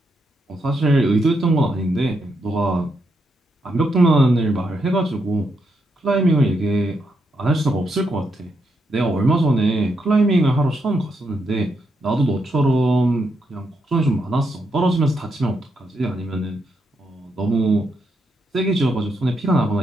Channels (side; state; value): both; normal; correlation 0.80